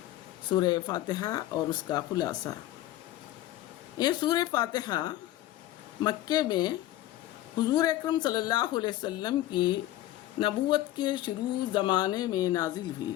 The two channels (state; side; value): quieter; right; 14.5 dB